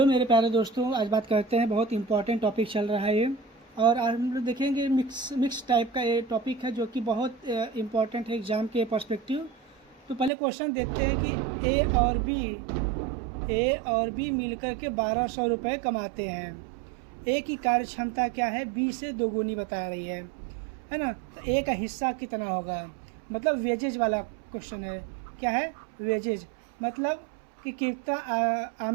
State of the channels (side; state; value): left; drops out; at 10.3 s